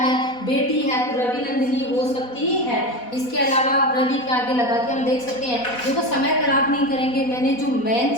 बेटी है, तो रवि नंदनी हो सकती है। इसके अलावा रवि के आगे लगा के हम देख सकते हैं। देखो समय खराब नहीं करेंगे, मैंने जो मेन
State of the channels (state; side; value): late; right; 4.1 ms